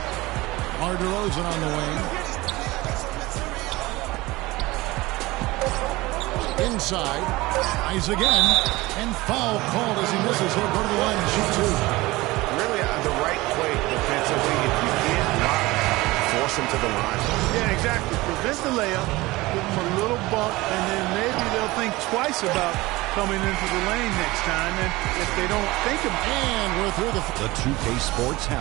DeRozan on the wing. Inside. Eyes again. And foul called as he misses. He'll go to the line and shoot two. Really the right play defensively. If you can't block, force him to the line. Yeah, exactly. Prevent the layup. Give him a little bump, and then maybe they'll think twice about coming into the lane next time. And if they don't think of it. And we're through the 2K Sports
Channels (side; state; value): left; quieter; 20.4 dB